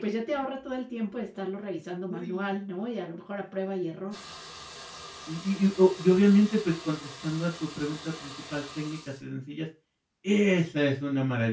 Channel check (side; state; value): both; identical; correlation 1.00